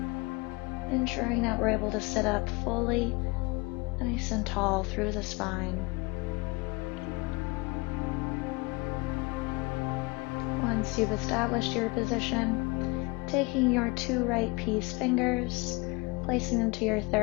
Ensuring that we're able to sit up fully, nice and tall through the spine. Once you've established your position, taking your 2 right peace fingers, placing them to your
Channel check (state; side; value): quieter; right; 26.4 dB